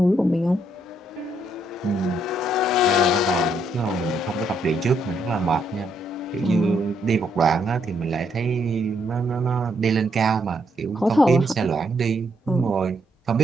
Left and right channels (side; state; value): both; normal; correlation 0.74